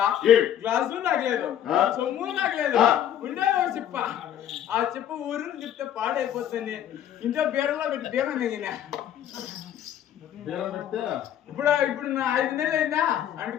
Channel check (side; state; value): right; quieter; 10.6 dB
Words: గ్లాసు నాకు లేదు చొమ్ము నాకు లేదు ఉండే ఒక చెప్ప ఆ చెప్పు ఊరిని చెప్తే పాడైపోతుంది ఇంట్లో బీడలో పెట్టి బీరం దిగినా ఇప్పుడు నా 5 నెలలు అయిందా